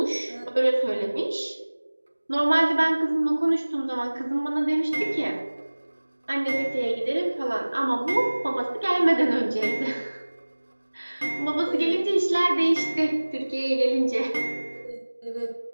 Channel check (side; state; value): both; inverted; correlation -1.00